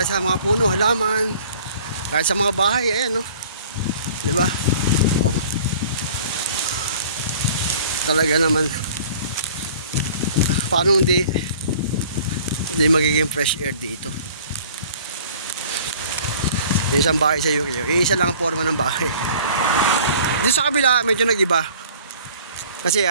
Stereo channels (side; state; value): both; inverted; correlation -0.49